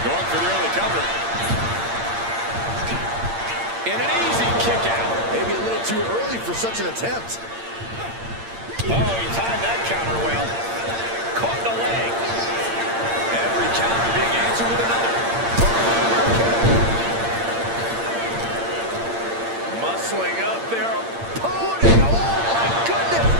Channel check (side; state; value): left; late; 8.7 ms